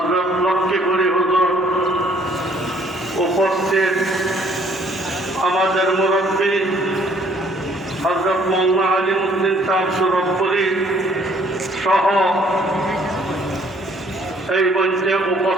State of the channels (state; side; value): normal; both; correlation 0.62